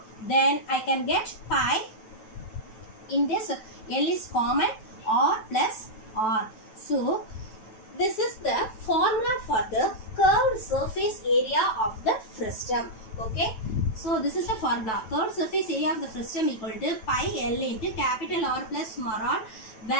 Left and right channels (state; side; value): late; right; 9.1 ms